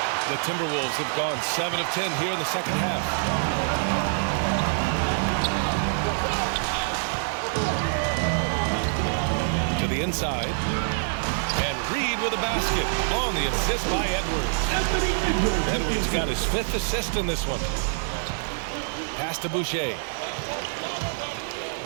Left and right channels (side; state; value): left; silent; digital silence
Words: The Timberwolves have gone 7 of 10 here in the second half. To the inside. And Reed with a basket on the assist by Edwards. Edwards got his 5th assist in this one. Pass to Boucher.